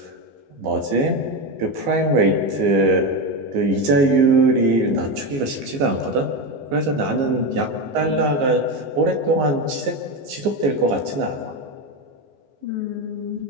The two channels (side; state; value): left; late; 15 ms